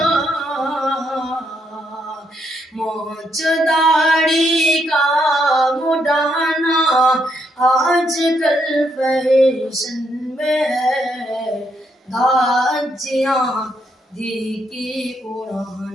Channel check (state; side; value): normal; both; correlation 0.76